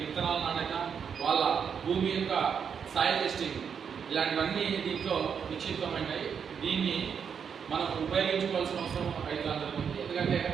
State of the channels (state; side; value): quieter; left; 7.1 dB